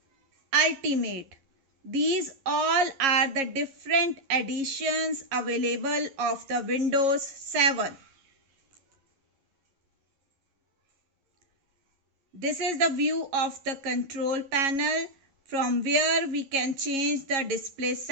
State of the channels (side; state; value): left; late; 11 ms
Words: Ultimate. These all are the different editions available of the Windows 7. This is the view of the control panel from where we can change the display